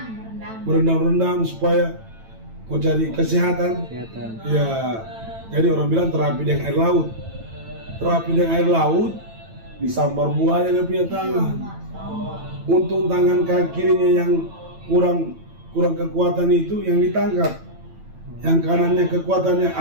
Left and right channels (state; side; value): late; left; 9.0 ms